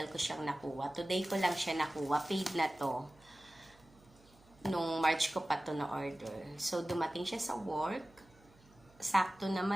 ko siyang nakuha. Today ko lang siya nakuha. Paid na to. Nung March ko pa to na-order. So, dumating siya sa work. Sakto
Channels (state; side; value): noise; right; hum, 28 dB below the sound